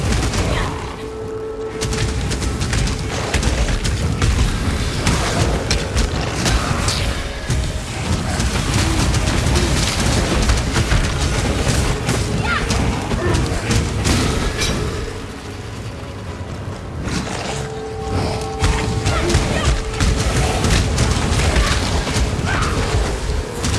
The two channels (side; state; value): both; identical; correlation 1.00